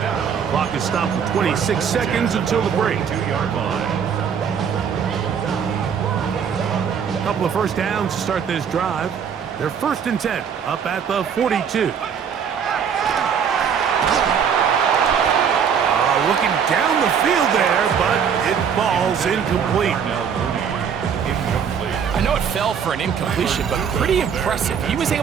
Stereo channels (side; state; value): left; quieter; 7.3 dB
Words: Clock is stopped for 26 seconds until the break. 2-yard line. A couple of first downs to start this drive. They're 1st and 10, up at the 42. Looking down the field there, but it falls incomplete. I know it fell for an incompletion, but pretty impressive. He was